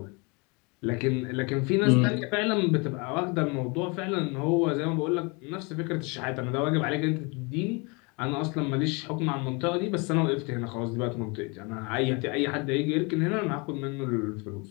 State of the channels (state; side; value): quieter; right; 29.9 dB